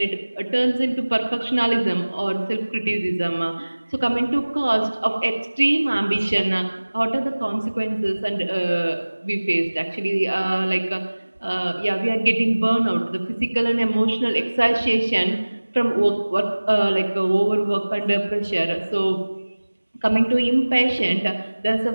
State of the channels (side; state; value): both; inverted; correlation -1.00